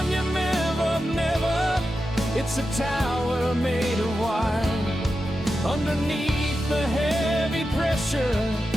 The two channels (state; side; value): normal; both; correlation 0.90